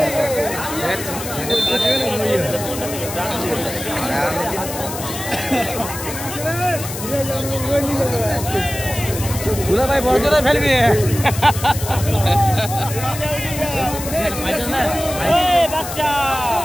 দুলা ভাই বড় জোরে ফেলবি বাচ্চা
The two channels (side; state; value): left; noise; hiss, 9 dB below the sound